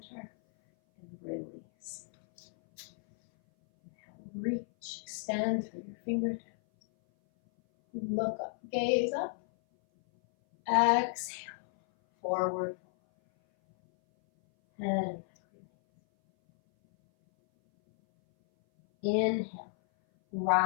and release. Inhale, reach, extend through your fingertips. Look up, gaze up. Exhale, forward fold. And inhale,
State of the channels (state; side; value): silent; right; 56 dB below the other